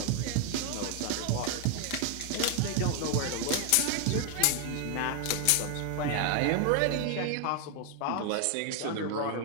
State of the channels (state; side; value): different; both; correlation 0.00